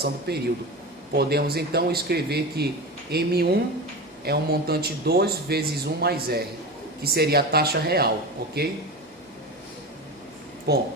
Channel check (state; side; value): normal; both; correlation 0.25